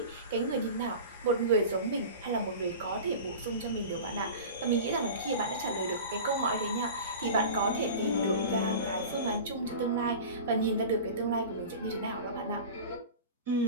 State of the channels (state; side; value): inverted; both; correlation -0.34